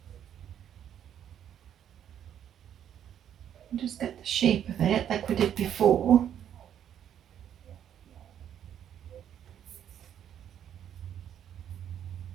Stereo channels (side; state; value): left; quieter; 9.8 dB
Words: Just get the shape of it like we did before.